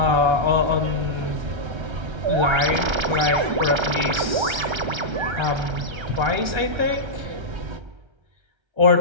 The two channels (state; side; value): late; left; 1.3 ms